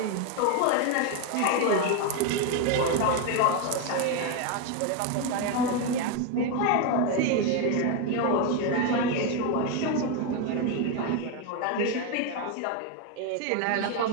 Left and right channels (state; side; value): different; both; correlation 0.02